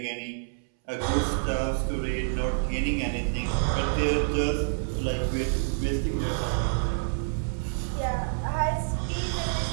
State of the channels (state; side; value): silent; left; 60 dB below the other